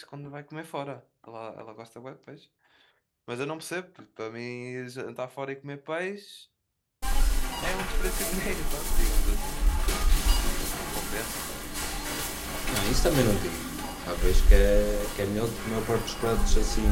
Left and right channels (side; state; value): both; identical; correlation 1.00